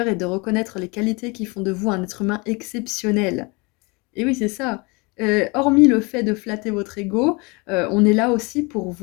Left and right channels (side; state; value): right; quieter; 27.9 dB